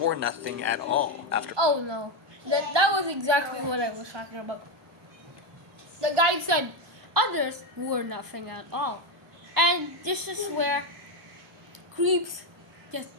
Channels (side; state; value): left; late; 1.2 ms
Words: nothing at all. Oh no, that was exactly what I was talking about. The guy said others wore nothing at all, and this is where creeps just